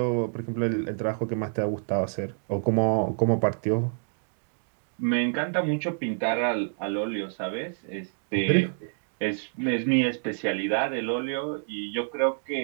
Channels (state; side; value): silent; left; digital silence